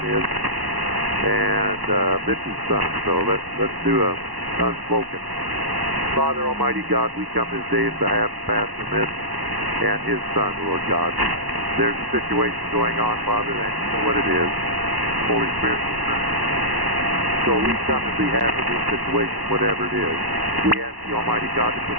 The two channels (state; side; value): late; left; 1.1 ms